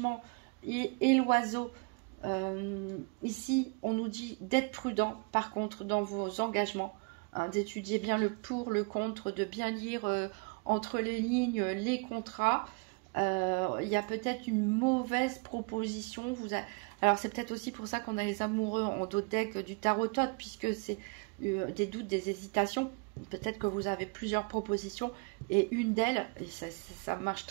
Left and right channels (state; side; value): quieter; left; 33.4 dB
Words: et l'oiseau, ici, on nous dit d'être prudent, par contre, dans vos engagements, hein, d'étudier bien le pour, le contre, de bien lire entre les lignes les contrats. Il y a peut-être une mauvaise proposition. Alors, c'est peut-être aussi pour ça qu'on a les amoureux en dos de deck du tarot-tot, puisque c'est des doutes, des hésitations. Peut-être que vous avez plusieurs propositions et une d'elles, et ça marche